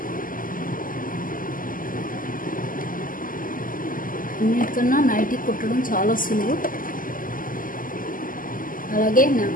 అన్నిటికన్నా నైటీ కుట్టడం చాలా సులువు. అలాగే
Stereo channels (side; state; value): right; late; 0.40 ms